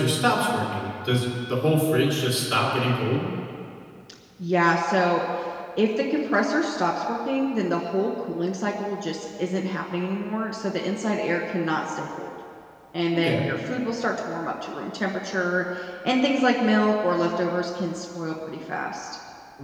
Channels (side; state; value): both; identical; correlation 1.00